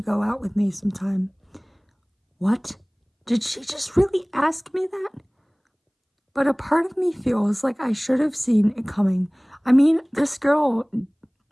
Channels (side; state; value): both; identical; correlation 1.00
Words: go out with me sometime. What? Did she just really ask me that? But a part of me feels like I should have seen it coming. I mean, this girl